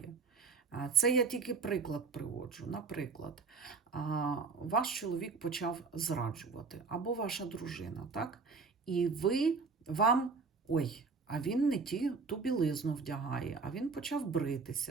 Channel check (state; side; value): quieter; left; 4.6 dB